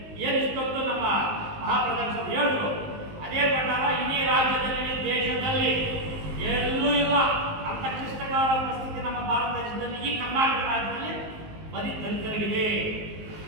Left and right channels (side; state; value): left; late; 19 ms